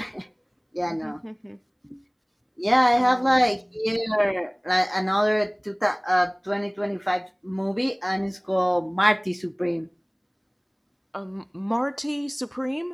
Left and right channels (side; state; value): both; identical; correlation 1.00